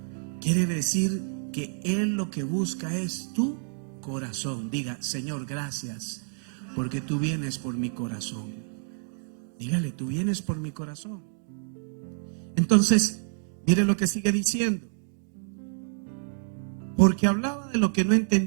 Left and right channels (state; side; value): silent; left; digital silence